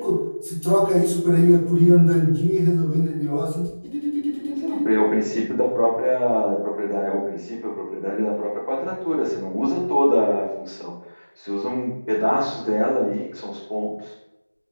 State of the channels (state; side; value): inverted; both; correlation -1.00